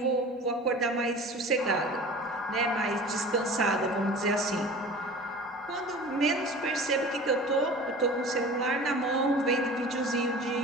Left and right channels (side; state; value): both; normal; correlation 0.40